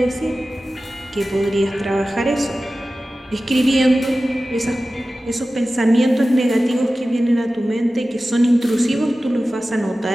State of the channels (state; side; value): normal; both; correlation 0.95